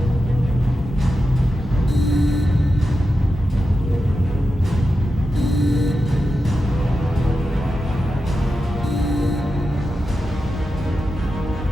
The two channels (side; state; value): both; normal; correlation 0.90